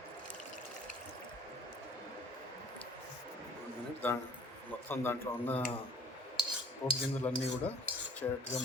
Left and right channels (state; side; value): normal; both; correlation 0.51